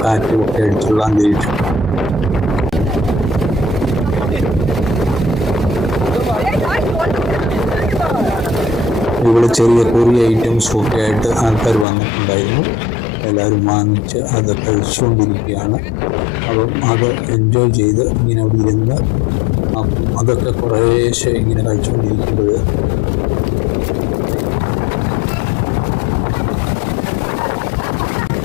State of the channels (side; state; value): right; drops out; at 11.9 s